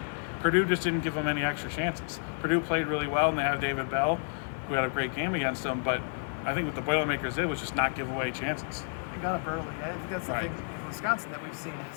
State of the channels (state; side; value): silent; right; 55 dB below the other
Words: Purdue just didn't give them any extra chances. Purdue played really well, and they have David Bell, who had a great game against them, but I think what the Boilermakers did was just not give away chances. They got up early. I think that's the thing with Wisconsin that we've seen